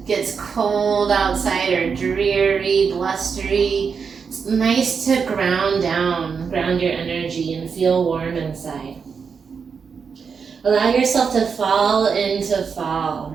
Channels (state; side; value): quieter; left; 5.9 dB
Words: gets cold outside or dreary, blustery. It's nice to ground your energy and feel warm inside. Allow yourself to fall into fall